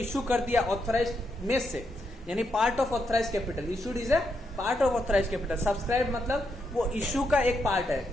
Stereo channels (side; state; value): both; normal; correlation 0.81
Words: कर दिया ऑथराइज्ड में से, यानी part of authorised capital. Issued is a part of authorised capital. Subscribe मतलब वो इशू का एक पार्ट है,